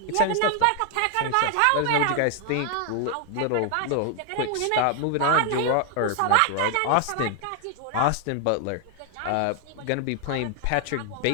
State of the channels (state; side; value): different; both; correlation 0.00